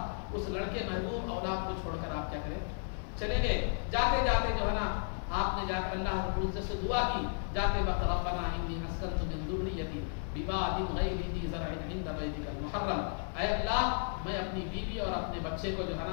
اس لڑکے محبوب اولاد کو چھوڑ کر آپ کیا کریں چلے گئے. جاتے جاتے جو ہے نا آپ نے جا کر اللہ رب العزت سے دعا کی جاتے وقت ربنا انی اسکنت من ذریتی بواد غیر ذی زرع عند بیتک المحرم، اے اللہ میں اپنی بیوی اور اپنے بچے کو جو ہے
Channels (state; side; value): silent; right; 55 dB below the other